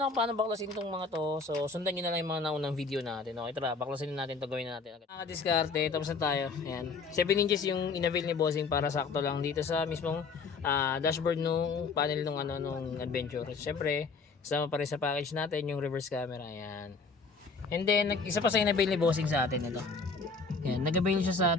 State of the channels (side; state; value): right; quieter; 4.5 dB